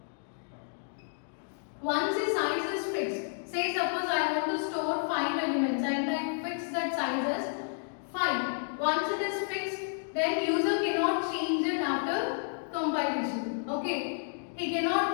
Once the size is fixed, say suppose I want to store 5 elements and I fix that size as 5. Once it is fixed, then user cannot change it after compilation. Okay, he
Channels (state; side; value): silent; right; digital silence